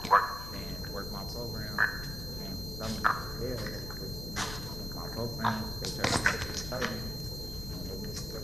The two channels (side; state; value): left; noise; rumble, 9 dB below the sound